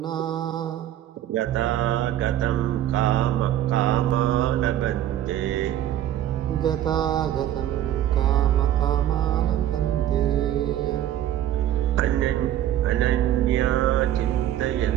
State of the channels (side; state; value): left; quieter; 11.9 dB